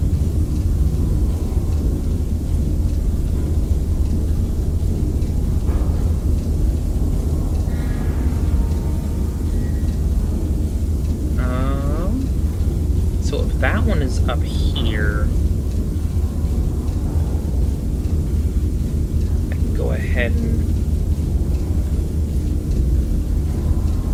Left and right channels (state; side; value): identical; both; correlation 1.00